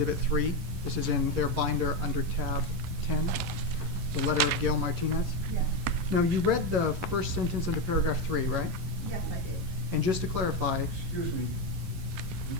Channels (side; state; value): left; late; 11 ms